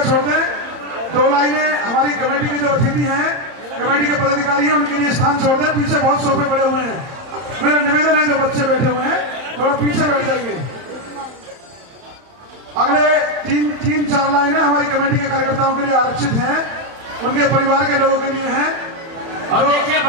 छोड़ दें। 2 लाइनें हमारी कमेटी के जो अतिथि हैं, कमेटी के पदाधिकारी हैं, उनके लिए स्थान छोड़ दें। पीछे बहुत सोफे पड़े हुए हैं, मेरा निवेदन है जो बच्चे बैठे हुए हैं थोड़ा पीछे बैठ जाएंगे। अगले 3-4 लाइनें हमारी कमेटी के कार्यकर्ताओं के लिए आरक्षित हैं, उनके परिवार के लोगों के लिए हैं। और देखिए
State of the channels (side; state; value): left; late; 30 ms